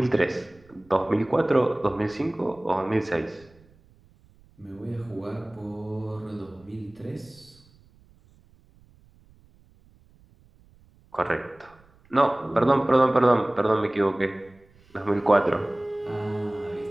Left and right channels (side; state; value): right; noise; rumble, 29 dB below the sound